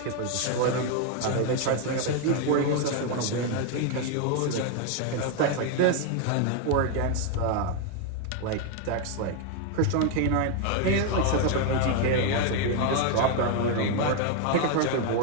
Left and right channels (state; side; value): different; both; correlation 0.01